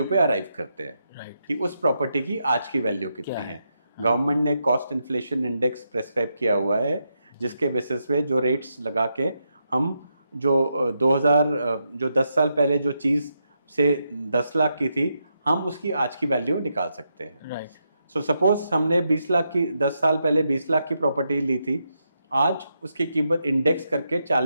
पे अराइव करते हैं। राइट। कि उस प्रॉपर्टी की आज की वैल्यू क्या कितनी है? है। गवर्नमेंट ने कॉस्ट इन्फ्लेशन इंडेक्स प्रेस्क्राइब किया हुआ है, जिसके बेसिस पे जो रेट्स लगा के हम जो 10 साल पहले जो चीज़ से 10 लाख की थी, हम उसकी आज की वैल्यू निकाल सकते हैं। राइट। सो सपोज हमने 20 लाख की 10 साल पहले 20 लाख की प्रॉपर्टी ली थी, आज उसकी कीमत इंडेक्स करके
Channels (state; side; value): inverted; both; correlation -0.83